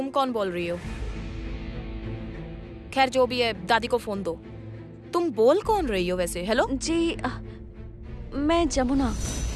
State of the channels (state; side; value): identical; both; correlation 1.00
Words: कौन बोल रही हो? खैर जो भी है, दादी को फोन दो। तुम बोल कौन रही हो वैसे? हेलो जी, मैं जमुना।